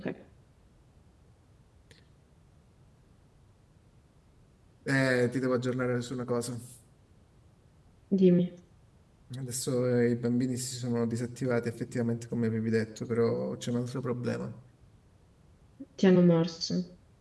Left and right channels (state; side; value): identical; both; correlation 1.00